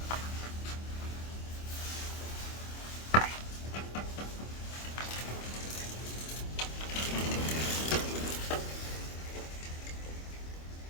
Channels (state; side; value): late; right; 25 ms